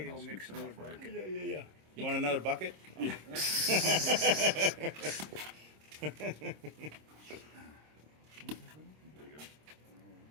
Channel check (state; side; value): late; left; 26 ms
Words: to I'll go scoop mix some another up for you. bucket. Yeah. You want another bucket? Yeah. There you go.